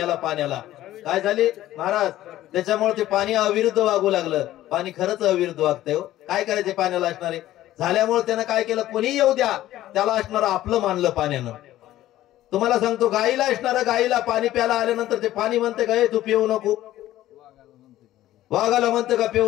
पाण्याला काय झाली महाराज? त्याच्यामुळे ते पाणी अविरुद्ध वागू लागलं. पाणी खरंच अविरुद्ध वागतंय. काय करायचे पाण्याला असणारे? झाल्यामुळे त्यानं काय केलं? कोणी येऊ द्या, त्याला असणारं आपलं मानलं पाण्यानं. तुम्हाला सांगतो, गाईला असणारं, गाईला पाणी प्यायला आल्यानंतर ते पाणी म्हणते का, तू पिऊ नको? वाघाला म्हणते का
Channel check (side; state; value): right; quieter; 14.3 dB